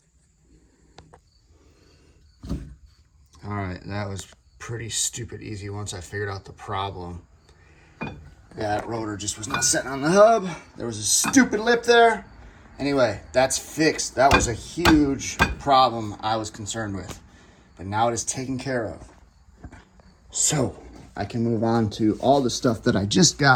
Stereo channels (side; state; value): both; identical; correlation 1.00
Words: All right, that was pretty stupid easy once I figured out the problem. That rotor just was not sitting on the hub. There was a stupid lip there. Anyway, that's fixed. That was a huge problem I was concerned with. But now it is taken care of. So, I can move on to all the stuff that I just